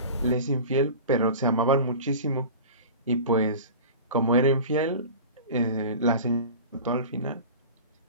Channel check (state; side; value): inverted; both; correlation -0.36